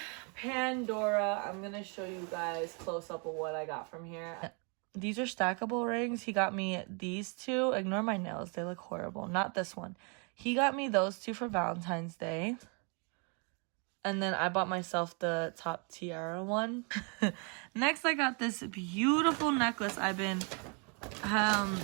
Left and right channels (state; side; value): quieter; left; 35.4 dB